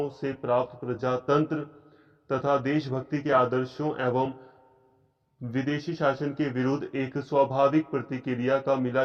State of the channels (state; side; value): identical; both; correlation 1.00